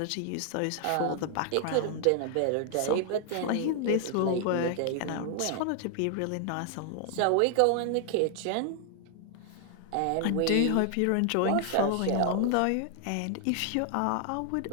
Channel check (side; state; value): both; different; correlation 0.00